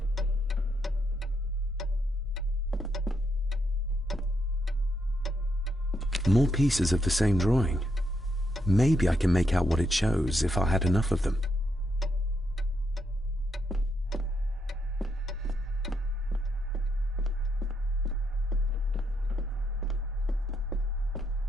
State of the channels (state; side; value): normal; both; correlation 0.78